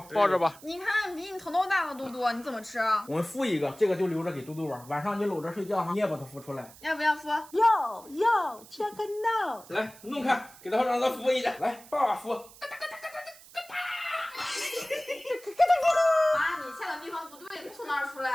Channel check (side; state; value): right; noise; hiss, 21 dB below the sound